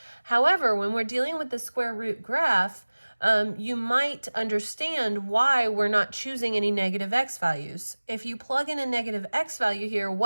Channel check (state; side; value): inverted; both; correlation -1.00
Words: However, when we're dealing with the square root graph, you might understand why we're not choosing any negative x values. If you plug in a negative x value here,